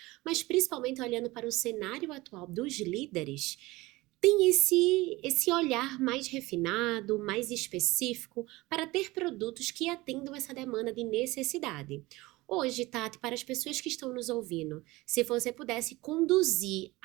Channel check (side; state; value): left; quieter; 20.6 dB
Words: mas principalmente olhando para o cenário atual dos líderes, tem esse olhar mais refinado, mais específico, para ter produtos que atendam essa demanda de necessidade. Hoje, Tati, para as pessoas que estão nos ouvindo, se você pudesse conduzir